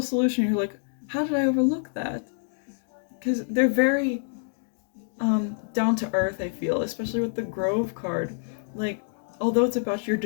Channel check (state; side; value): silent; right; digital silence